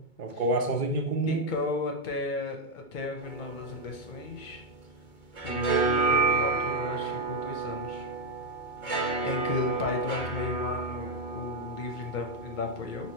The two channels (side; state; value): right; late; 2.2 ms